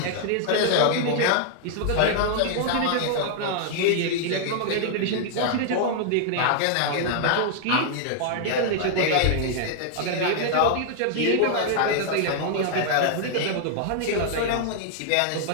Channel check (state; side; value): different; both; correlation -0.01